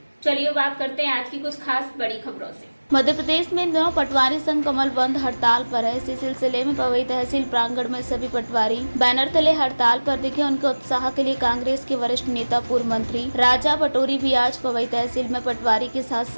चलिए बात करते हैं आज की कुछ खास बड़ी खबरों से। मध्य प्रदेश में इन दिनों पटवारी संघ कमल बंद हड़ताल पर है। इसी सिलसिले में पवई तहसील प्रांगण में सभी पटवारी बैनर तले हड़ताल पर दिखे। उनके उत्साह के लिए कांग्रेस के वरिष्ठ नेता पूर्व मंत्री राजा पटोरी भी आज पवई तहसील में पटवारी के साथ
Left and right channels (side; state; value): both; inverted; correlation -1.00